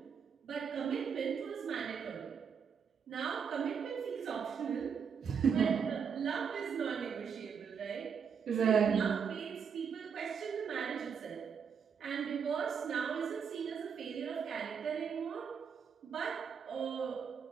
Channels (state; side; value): quieter; left; 6.7 dB